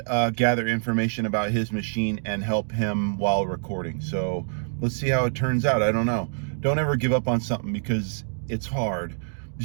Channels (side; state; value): left; silent; digital silence